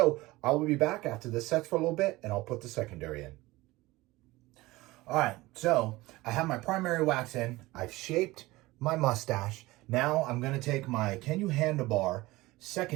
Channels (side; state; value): left; quieter; 19.9 dB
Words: I will be back after this sets for a little bit, and I'll put the secondary in. All right, so I have my primary wax in. I've shaped my mustache. Now I'm going to take my Can You Handlebar